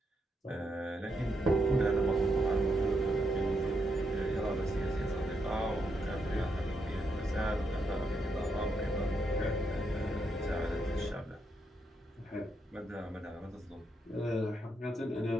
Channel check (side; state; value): both; normal; correlation 0.80